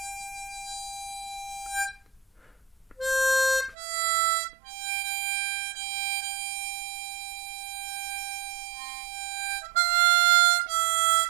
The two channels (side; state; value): left; drops out; at 3.8 s